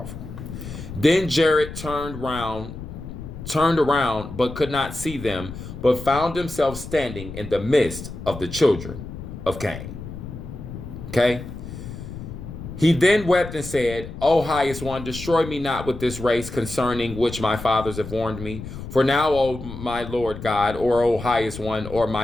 Then Jared turned around, but could not see them, but found himself standing in the midst of the children of Cain. Okay? He then wept and said, "O highest one, destroy me not with this race concerning which my fathers have warned me. For now, O my Lord God, or O highest one, or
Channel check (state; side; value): noise; left; rumble, 11 dB below the sound